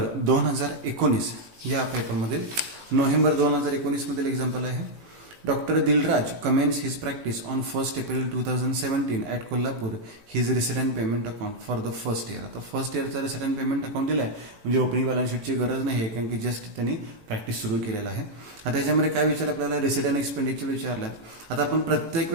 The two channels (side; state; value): left; late; 18 ms